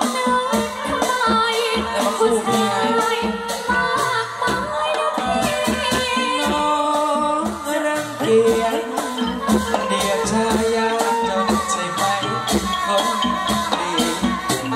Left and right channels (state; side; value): identical; both; correlation 1.00